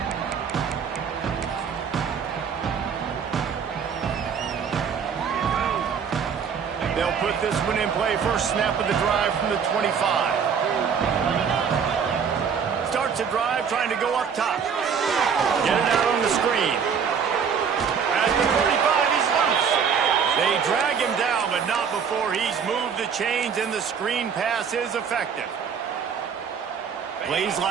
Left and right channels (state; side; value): quieter; left; 6.8 dB